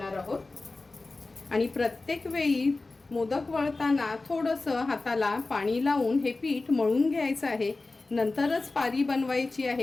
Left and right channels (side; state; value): right; quieter; 3.4 dB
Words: आहोत. आणि प्रत्येक वेळी मोदक वळताना थोडंसं हाताला पाणी लावून हे पीठ मळून घ्यायचं आहे. नंतरच पारी बनवायची